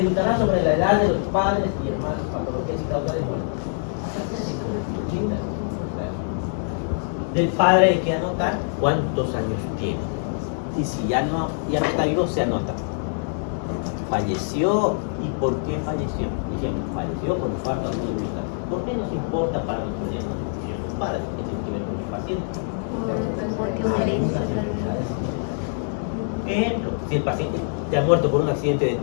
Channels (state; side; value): silent; right; digital silence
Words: sobre la edad de los padres y hermanos, patologías y causa de muerte. Del padre hay que anotar cuántos años tiene. Y si ya no está vivo, se anota. Falleció, ¿y por qué falleció? Dijimos, falleció por falta de voluntad. ¿Por qué nos importa para los padres que tienen que ver con el paciente? Ejemplo, si el paciente ya ha muerto por un accidente de